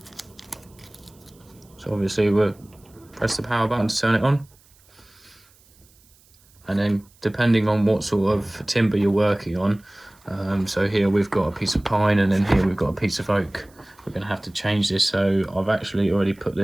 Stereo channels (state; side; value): noise; right; hiss, 30 dB below the sound